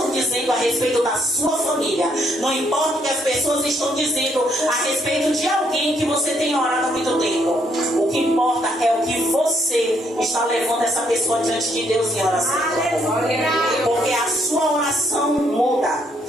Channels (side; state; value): both; normal; correlation 0.71